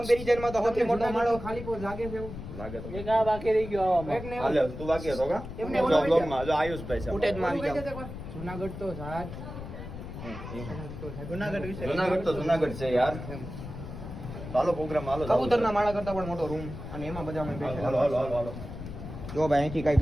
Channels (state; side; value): noise; left; rumble, 10 dB below the sound